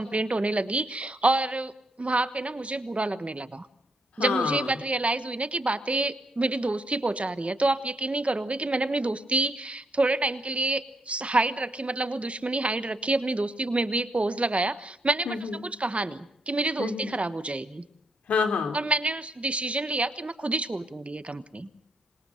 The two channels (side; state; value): both; normal; correlation 0.74